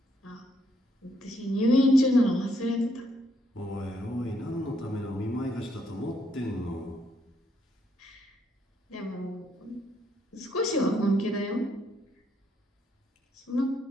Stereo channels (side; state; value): both; normal; correlation 0.73